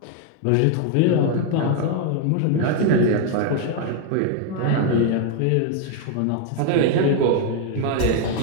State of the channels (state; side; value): different; both; correlation 0.01